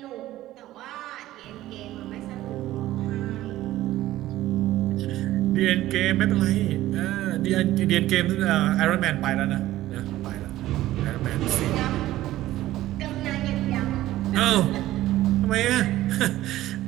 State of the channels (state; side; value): quieter; left; 15.2 dB